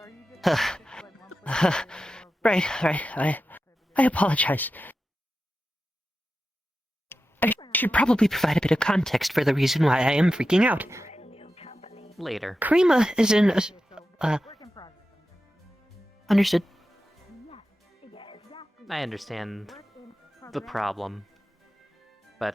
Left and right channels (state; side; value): normal; both; correlation 0.92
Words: Right. I apologize. I should probably provide a bit of context for the reason why I am freaking out. Later. Karima is in a... Understood. I understand the problem,